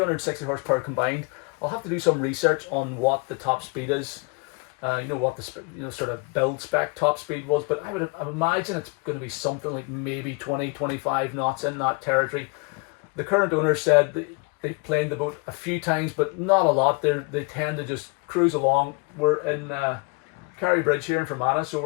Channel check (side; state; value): right; quieter; 30.7 dB